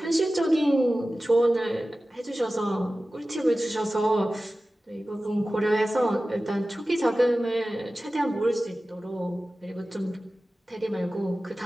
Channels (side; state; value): both; normal; correlation 0.96